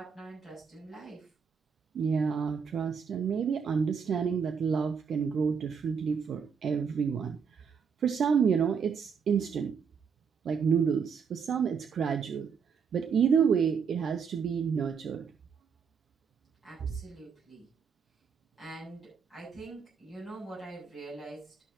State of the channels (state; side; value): quieter; left; 6.4 dB